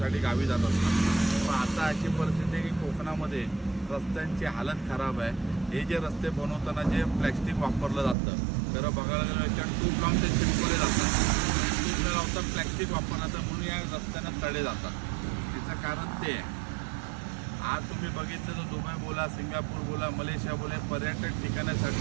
गावी जात असतात. पण आता अशी परिस्थिती आहे की कोकणामध्ये रस्त्यांची हालत खराब आहे. हे जे रस्ते बनवताना जे प्लॅस्टिक वापरलं जातं, खरं बघायला गेलं याच्यात ट्यूब लावून ते चिपकवले जातात. ट्यूब न लावता प्लॅस्टिक वापरलं तर म्हणून या रस्त्यांना तडे जातात. त्याचं कारण ते आहे. आज तुम्ही बघितलं तर दुबई बोला, सिंगापूर बोला, मलेशिया बोला, पर्यटक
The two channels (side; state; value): left; drops out; at 8.2 s